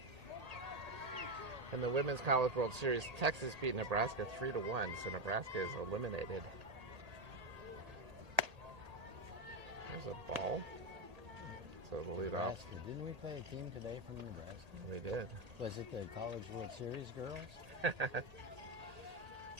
In the Women's College World Series, Texas beat Nebraska 3-1, so Nebraska is eliminated. There's a ball. So the lead off. Nebraska. Didn't we play a team today from Nebraska? We did. Was it the College World Series girls?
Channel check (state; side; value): late; left; 1.8 ms